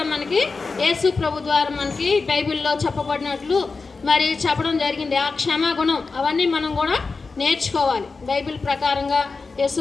మనకి యేసు ప్రభు ద్వారా మనకి బైబిల్లో చెప్పబడినట్లు మరి చెప్పడం జరిగింది. ఆ క్షమాగుణం అవన్నీ మనం కూడా నేర్చుకోవాలి. బైబిల్ ప్రకారంగా యేసు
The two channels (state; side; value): quieter; right; 4.3 dB